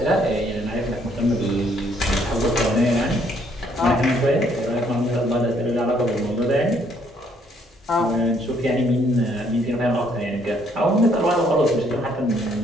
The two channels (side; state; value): both; normal; correlation 0.67